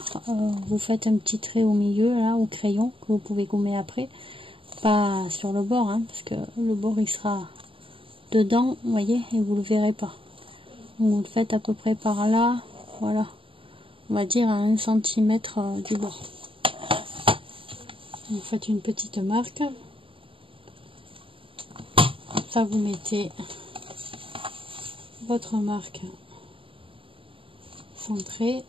vous faites un petit trait au milieu là au crayon que vous pouvez gommer après, pas sur le bord hein, parce que le bord il sera dedans, vous voyez, et vous le verrez pas. Donc vous le faites à peu près par là, voilà, on va dire à 1 cm du bord. Vous faites une petite marque, ça vous mettez votre marque centrée.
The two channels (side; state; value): left; late; 0.25 ms